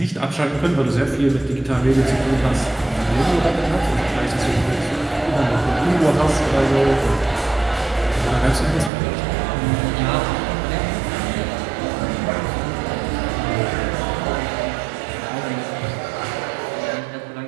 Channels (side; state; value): left; drops out; at 8.9 s